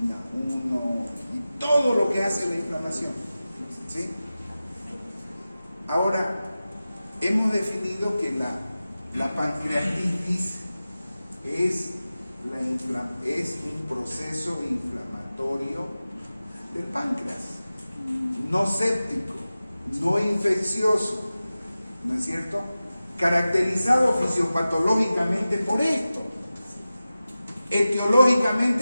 1 y todo lo que hace la inflamación. ¿Sí? Ahora, hemos definido que la pancreatitis es un proceso inflamatorio del páncreas, no séptico, no infeccioso, ¿no es cierto? caracterizado fisiopatológicamente por esto,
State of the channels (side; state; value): both; inverted; correlation -0.95